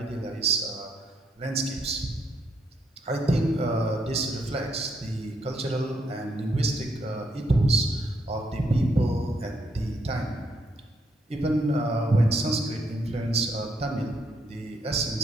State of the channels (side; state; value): both; normal; correlation 0.75